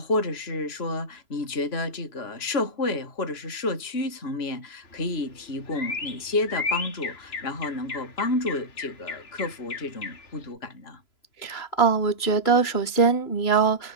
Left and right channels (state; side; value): late; right; 3.0 ms